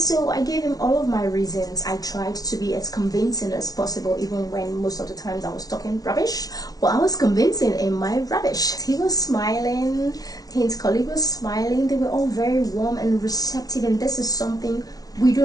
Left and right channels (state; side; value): late; right; 0.18 ms